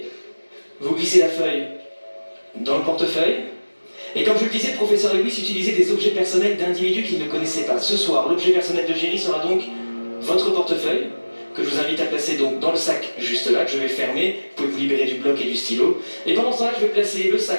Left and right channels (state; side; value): inverted; both; correlation -1.00